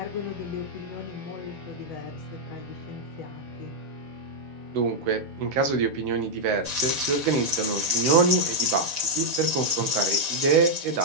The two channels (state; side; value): late; left; 6.8 ms